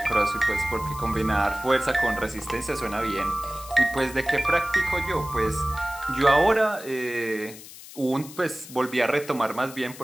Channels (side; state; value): left; noise; hiss, 16 dB below the sound